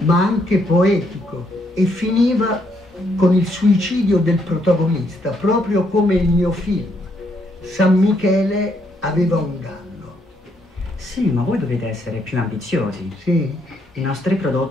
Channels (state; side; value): normal; both; correlation 0.73